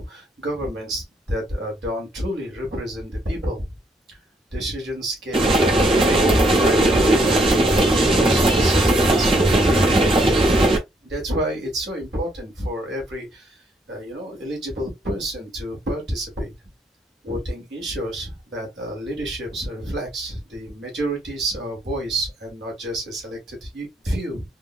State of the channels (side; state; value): both; normal; correlation 0.71